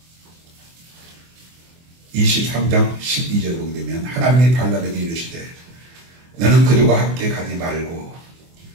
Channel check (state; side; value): late; left; 24 ms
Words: 23장 12절 보게 되면 하나님이 발람에게 이르시되 너는 그들과 함께 가지 말고